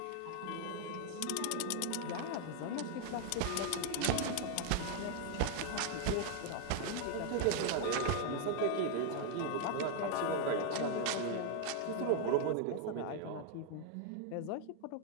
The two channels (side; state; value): both; different; correlation 0.00